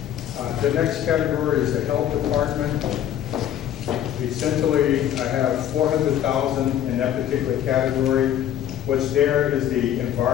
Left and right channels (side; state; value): right; quieter; 10.7 dB